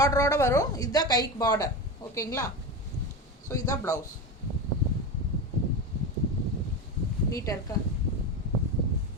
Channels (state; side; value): normal; both; correlation 0.21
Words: வரும். இதுதான் கைக்கு பார்டர், ஓகேங்களா? ஸோ இதுதான் ப்ளவுஸ். நீட்டாக இருக்கா?